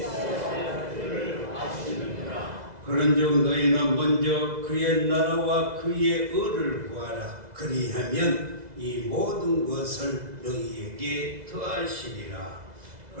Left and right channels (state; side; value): late; left; 2.0 ms